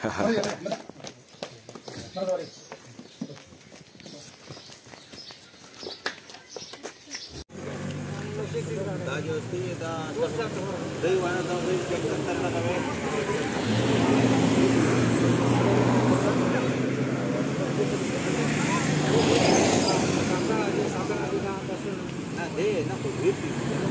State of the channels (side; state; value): both; identical; correlation 1.00